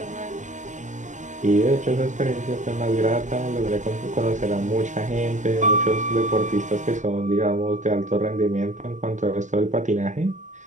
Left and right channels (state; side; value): late; left; 0.35 ms